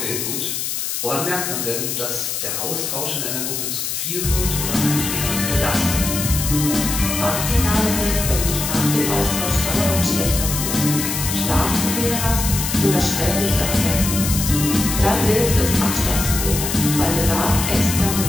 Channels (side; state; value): left; noise; hiss, 3 dB below the sound